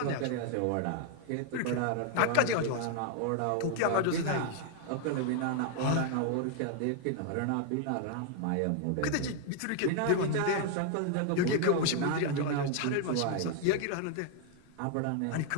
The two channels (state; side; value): different; both; correlation 0.00